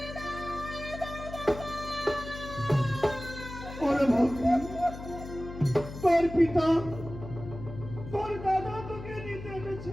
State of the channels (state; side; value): noise; left; hum, 11 dB below the sound